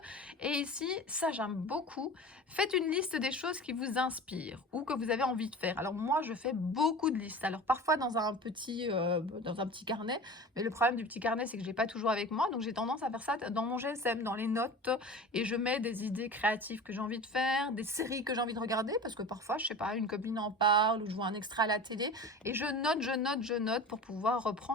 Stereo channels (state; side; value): normal; both; correlation 0.35